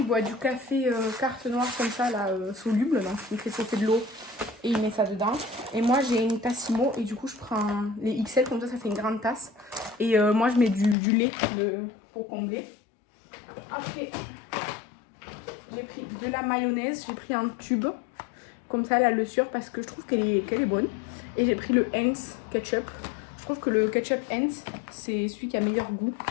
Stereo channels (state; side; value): drops out; right; at 11.0 s